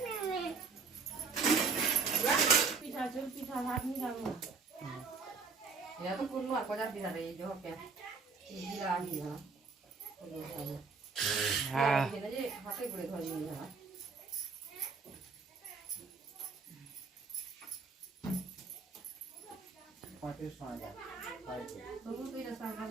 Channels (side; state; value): left; quieter; 4.8 dB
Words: এটা তো কোন আর কজার পিঠা রে যে হবে বিলাহি না হ্যাঁ এটা যে হাতে করে ধরে নিয়ে যাওয়া